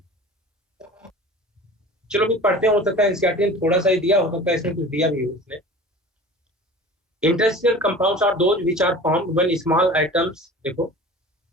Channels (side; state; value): both; normal; correlation 0.40